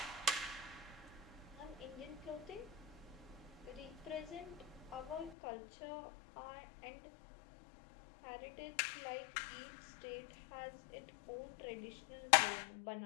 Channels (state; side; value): drops out; right; at 5.4 s